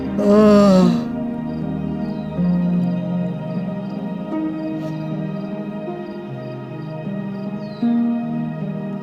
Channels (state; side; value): identical; both; correlation 1.00